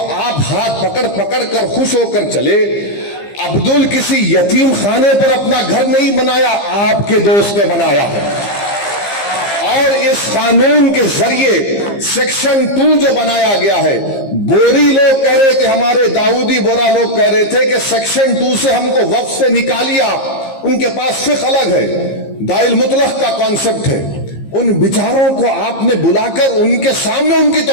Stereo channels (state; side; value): late; right; 15 ms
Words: آپ ہاتھ پکڑ پکڑ کر خوش ہو کر چلے. عبدل کسی یتیم خانے پر اپنا گھر نہیں بنایا, آپ کے دوست نے بنایا ہے. اور اس قانون کے ذریعے سیکشن 2 جو بنایا گیا ہے, بوری لوگ کہہ رہے تھے, ہمارے داؤدی بورا لوگ کہہ رہے تھے کہ سیکشن 2 سے ہم کو وقف سے نکالیے آپ. ان کے پاس فقہ الگ ہے, دائل مطلق کا کانسیپٹ ہے. ان بیچاروں کو آپ نے بلا کر ان کے سامنے ان کی